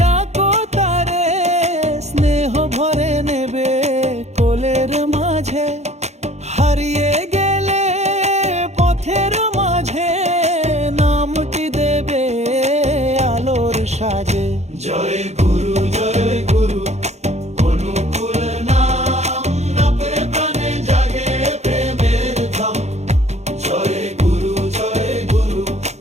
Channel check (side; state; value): left; late; 0.32 ms